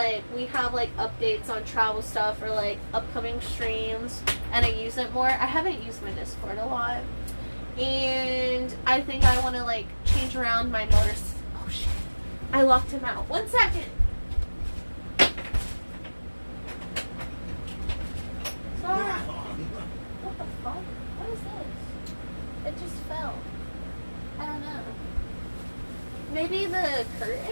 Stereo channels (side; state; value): both; inverted; correlation -1.00